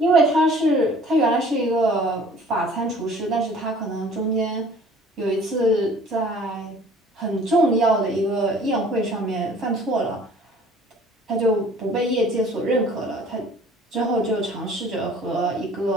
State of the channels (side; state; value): both; normal; correlation 0.51